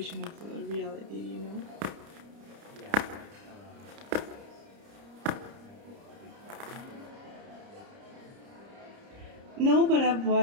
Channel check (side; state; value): left; late; 30 ms